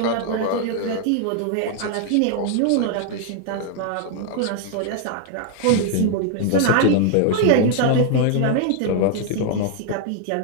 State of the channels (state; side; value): different; both; correlation 0.00